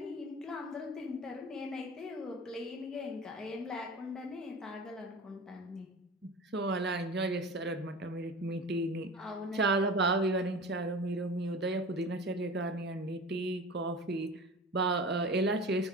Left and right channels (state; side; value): normal; both; correlation 0.35